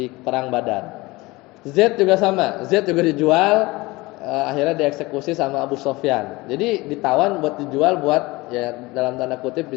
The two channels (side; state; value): right; quieter; 21.9 dB